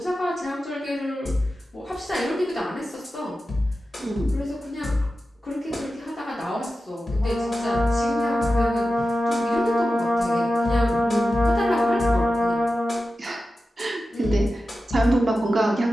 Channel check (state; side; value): normal; both; correlation 0.93